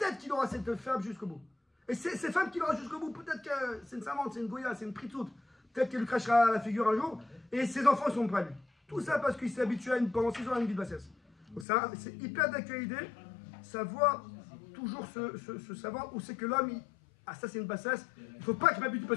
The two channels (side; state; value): right; drops out; at 11.7 s